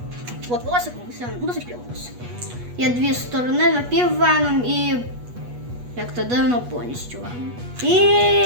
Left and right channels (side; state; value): left; late; 8.3 ms